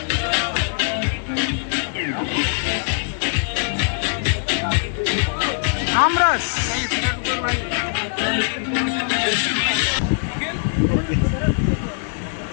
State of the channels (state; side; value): silent; right; digital silence